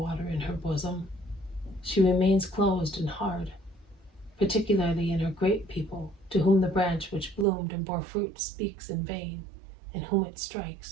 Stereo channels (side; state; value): left; drops out; at 7.5 s